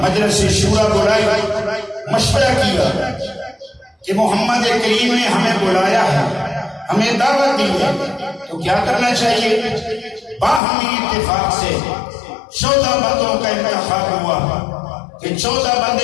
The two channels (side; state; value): right; drops out; at 10.6 s